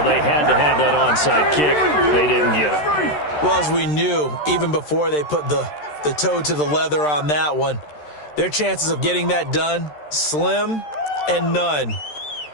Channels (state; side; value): late; right; 13 ms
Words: They had to have that onside kick. They didn't get it. Well, as we knew, even before they put the toe to the leather on that one, their chances of getting that done, slim and none.